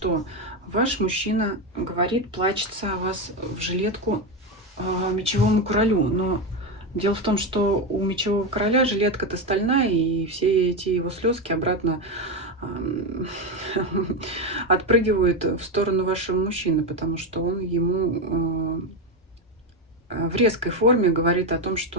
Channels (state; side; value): normal; both; correlation 0.12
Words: Ваш мужчина говорит, плачется о вас в жилетку мечевому королю. Но дело в том, что у мечевого короля жилетка-то стальная, и все эти его слезки обратно отпрыгивают в сторону вашего мужчины, потому что он ему в резкой форме говорит о том,